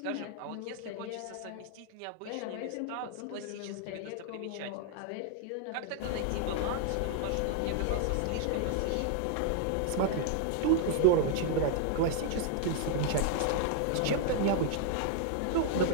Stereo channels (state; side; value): different; both; correlation 0.00